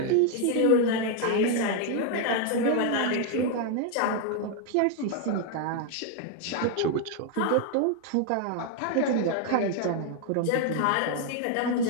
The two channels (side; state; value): both; different; correlation 0.00